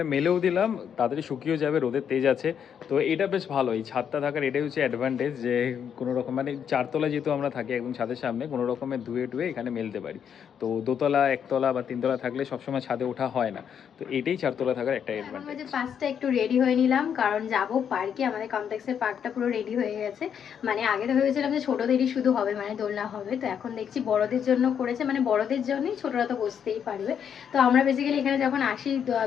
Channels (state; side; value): quieter; right; 8.1 dB